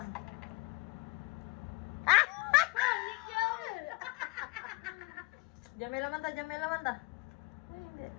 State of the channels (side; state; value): right; quieter; 26.7 dB